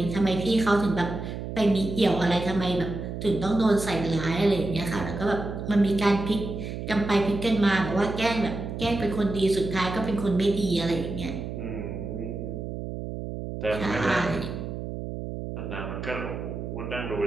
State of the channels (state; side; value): noise; right; hum, 6 dB below the sound